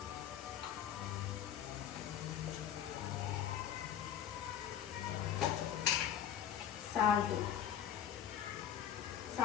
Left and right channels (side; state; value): right; quieter; 9.9 dB